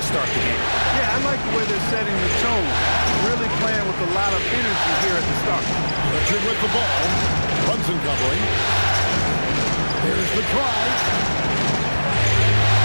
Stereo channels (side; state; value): both; inverted; correlation -1.00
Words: start the game. Yeah, I like the way they're setting the tone. Really playing with a lot of energy here at the start. Pritchard with the ball. Brunson covering. Here's the try.